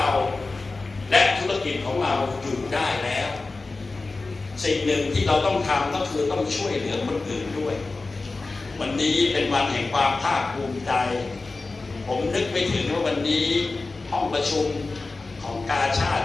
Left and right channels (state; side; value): quieter; right; 3.6 dB